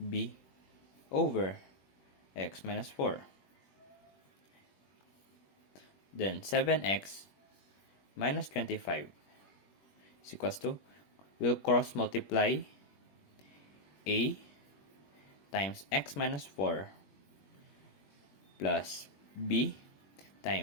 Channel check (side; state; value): right; late; 21 ms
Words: over x minus 4. Then 7x minus 25 is equals to, we'll cross multiply a times x minus 4 plus b